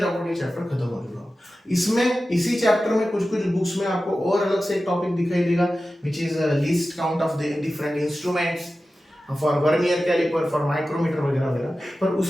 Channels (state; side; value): normal; both; correlation 0.94